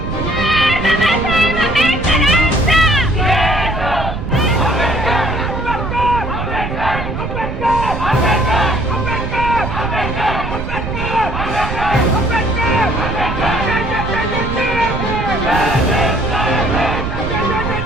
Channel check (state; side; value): noise; right; rumble, 5 dB below the sound